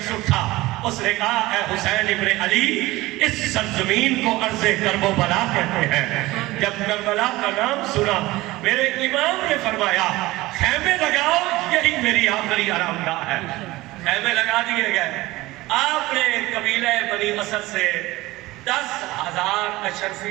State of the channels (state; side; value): quieter; left; 19.2 dB